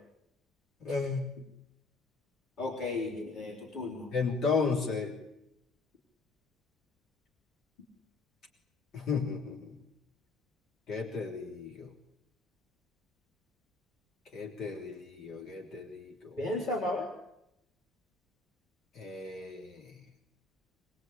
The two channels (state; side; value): quieter; right; 3.7 dB